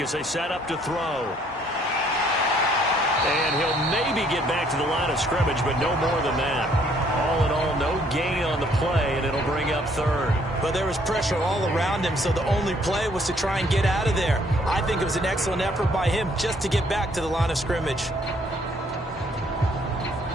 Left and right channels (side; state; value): both; normal; correlation 0.64